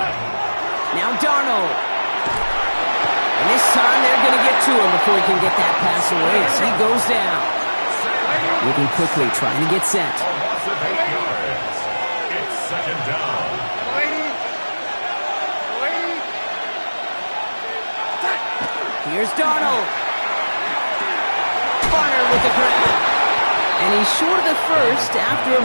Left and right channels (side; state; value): both; inverted; correlation -1.00